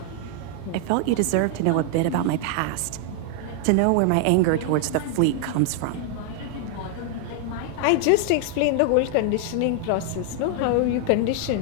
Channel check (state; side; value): different; both; correlation 0.00